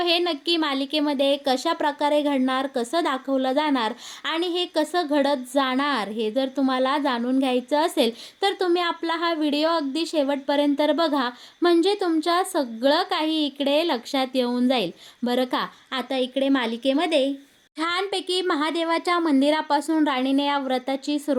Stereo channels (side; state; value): both; identical; correlation 1.00